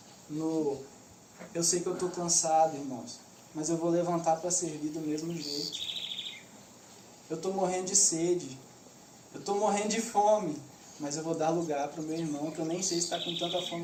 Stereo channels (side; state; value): both; identical; correlation 1.00